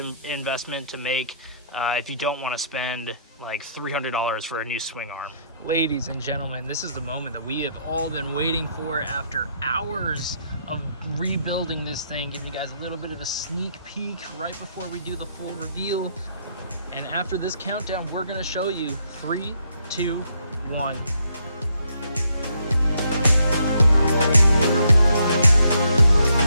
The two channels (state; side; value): inverted; both; correlation -0.72